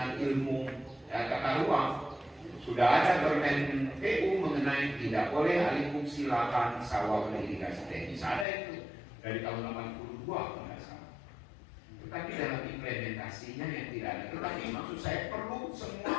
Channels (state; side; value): drops out; right; at 8.5 s